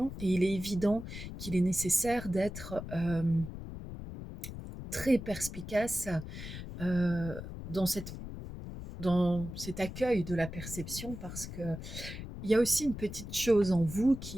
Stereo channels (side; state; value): left; noise; rumble, 9 dB below the sound